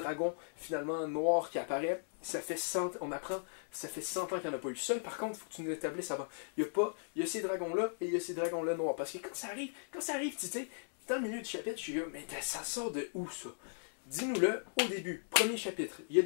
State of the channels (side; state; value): right; silent; digital silence